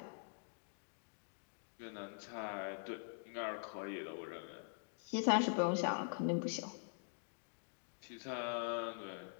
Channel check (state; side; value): silent; right; digital silence